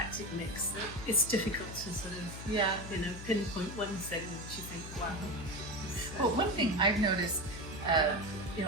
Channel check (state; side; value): noise; left; hum, 11 dB below the sound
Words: mix that it's difficult to sort of, Yeah. pinpoint one thing which you think, wow. Well, one thing I've noticed,